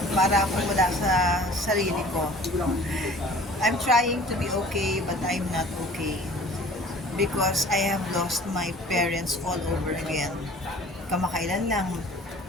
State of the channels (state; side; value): normal; both; correlation 0.48